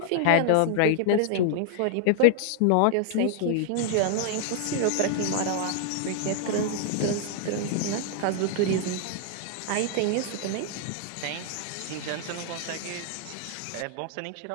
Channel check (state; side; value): different; both; correlation -0.01